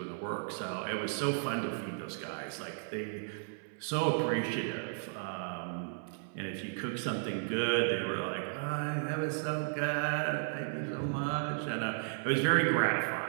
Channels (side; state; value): left; silent; 55 dB below the other